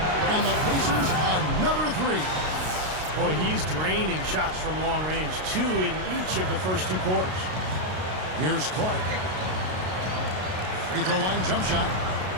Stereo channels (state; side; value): late; left; 32 ms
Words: And the Pacers, another 3. Boy, he's draining shots from long range. 2 in each of the first 2 quarters. Here's Clark. Free throw line jump shot.